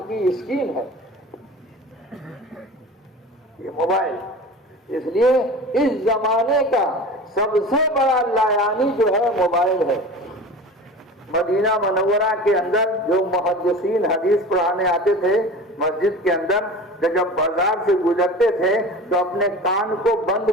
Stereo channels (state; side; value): normal; both; correlation 0.36